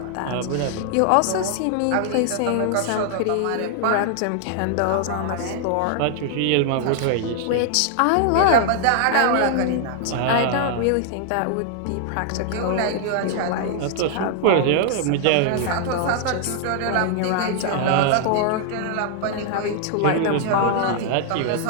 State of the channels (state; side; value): different; both; correlation 0.00